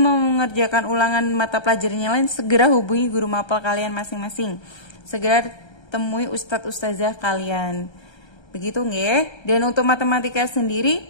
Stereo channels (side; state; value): right; late; 1.3 ms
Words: mengerjakan ulangan mata pelajaran yang lain, segera hubungi guru mapel kalian masing-masing. Segera temui ustadz ustazah kalian. Begitu nggih? Dan untuk matematika sendiri,